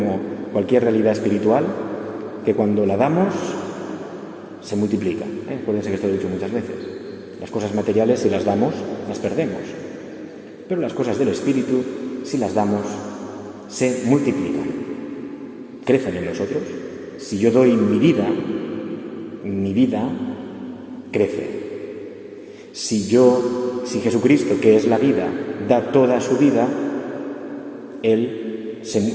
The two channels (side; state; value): both; identical; correlation 1.00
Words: cualquier realidad espiritual, que cuando la damos, se multiplica. Acuérdense que esto lo he dicho muchas veces. Las cosas materiales, si las damos, las perdemos. Pero las cosas del espíritu, si las damos, se multiplican. Crecen en nosotros. Si yo doy mi vida crece. Si Jesucristo, que es la vida, da toda su vida,